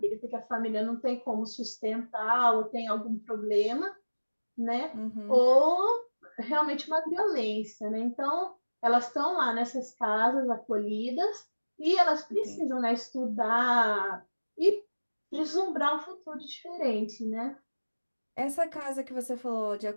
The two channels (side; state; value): both; inverted; correlation -1.00